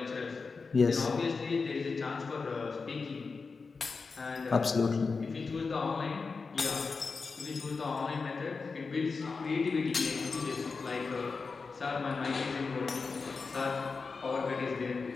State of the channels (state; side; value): quieter; right; 4.6 dB